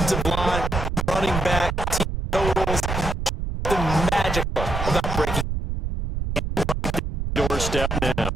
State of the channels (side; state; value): right; noise; rumble, 3 dB below the sound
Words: line, running back, team totals. Something magical about breaking Doorstep now.